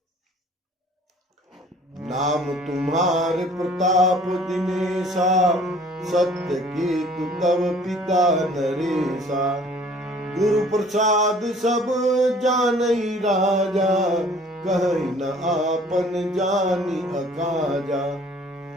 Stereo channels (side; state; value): both; normal; correlation 0.53